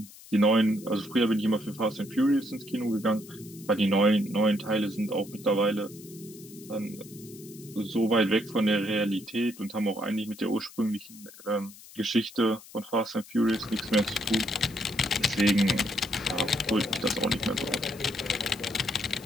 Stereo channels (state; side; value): noise; left; hiss, 19 dB below the sound